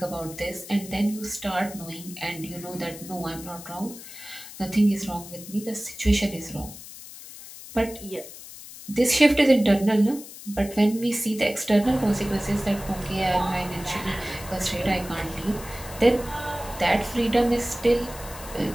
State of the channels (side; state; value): left; noise; hiss, 15 dB below the sound